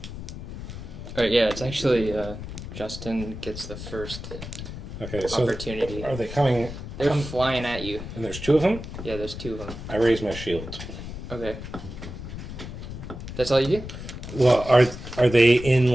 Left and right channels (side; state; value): left; noise; rumble, 9 dB below the sound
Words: Alright, yeah, it's actually Justin gets the first Okay, so opportunity. are they coming? They're flying at you. And there's 2 of them? Yeah, there's 2 of them. I raise my shield. Okay. That's all you do? Well, are they